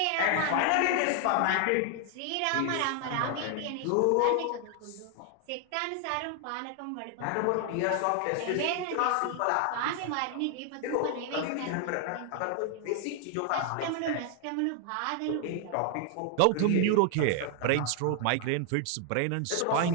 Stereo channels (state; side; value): different; both; correlation 0.00